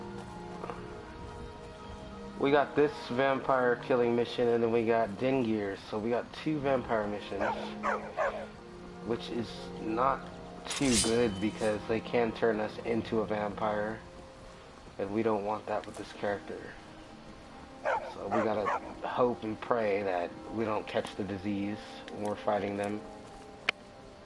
we got this vampire killing mission, and then we got Dingir. So we got 2 vampire missions, which is not too good because they can turn us into a vampire, and we don't want that with this character. So we gotta hope and pray that we don't catch the disease when we're fighting them.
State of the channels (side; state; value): both; identical; correlation 1.00